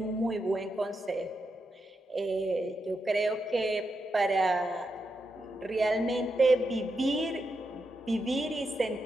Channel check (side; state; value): both; normal; correlation 0.85